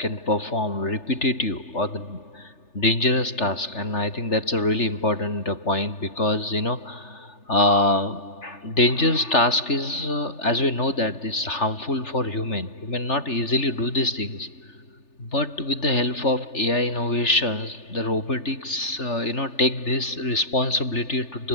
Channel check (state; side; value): late; right; 3.4 ms